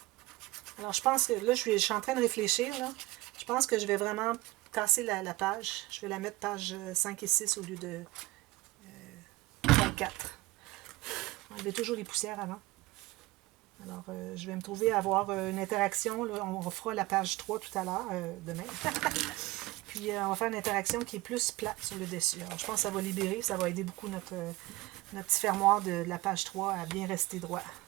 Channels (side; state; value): left; quieter; 20.3 dB